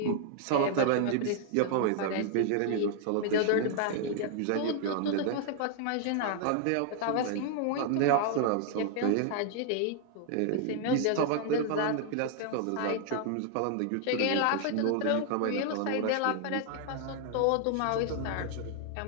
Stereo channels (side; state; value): both; different; correlation 0.00